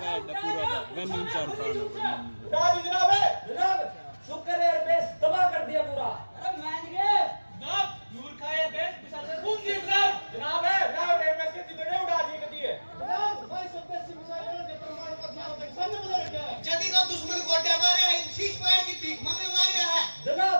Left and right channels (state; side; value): inverted; both; correlation -1.00